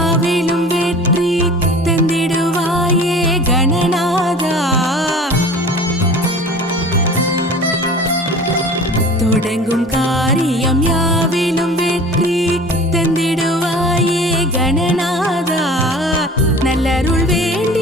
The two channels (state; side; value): normal; both; correlation 0.42